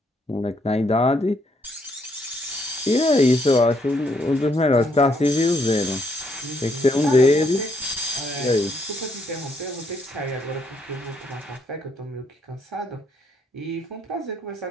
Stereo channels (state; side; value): normal; both; correlation 0.72